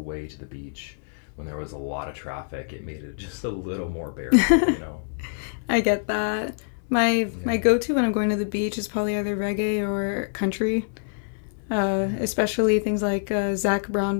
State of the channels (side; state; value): right; silent; 61 dB below the other